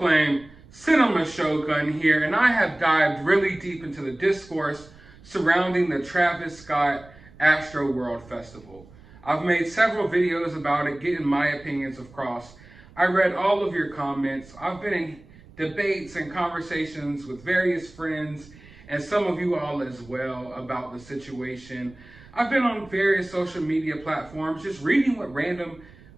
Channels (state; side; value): noise; right; rumble, 23 dB below the sound